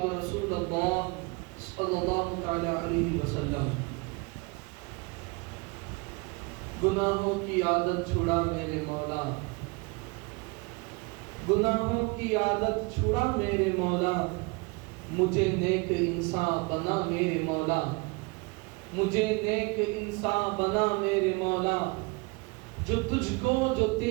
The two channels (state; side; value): quieter; left; 27.7 dB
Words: رسول اللہ صلی اللہ تعالی علیہ وسلم۔ گناہوں کی عادت چھڑا میرے مولا، گناہوں کی عادت چھڑا میرے مولا، مجھے نیک انسان بنا میرے مولا، مجھے نیک انسان بنا میرے مولا، جو تجھ کو جو